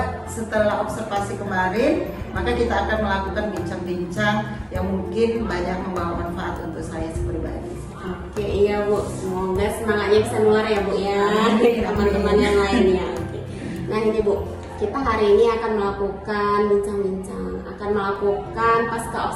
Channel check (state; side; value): identical; both; correlation 1.00